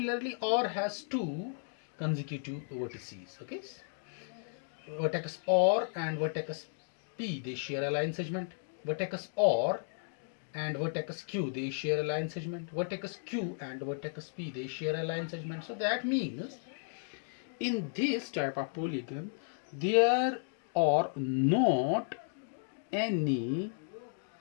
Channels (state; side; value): silent; right; digital silence